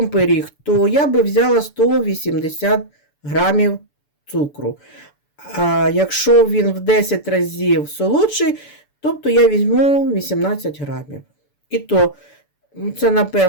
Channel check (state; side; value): late; right; 6.9 ms